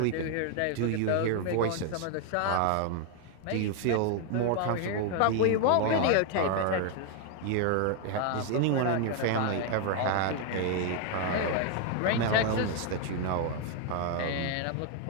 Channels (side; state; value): both; different; correlation 0.00